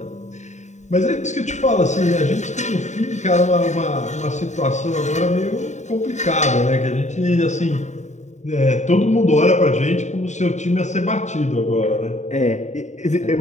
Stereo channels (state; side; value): late; right; 0.34 ms